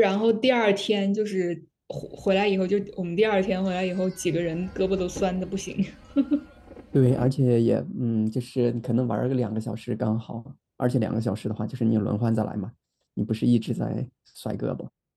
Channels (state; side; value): identical; both; correlation 1.00